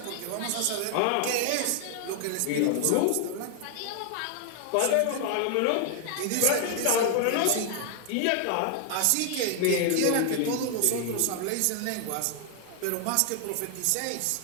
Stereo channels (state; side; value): different; both; correlation 0.00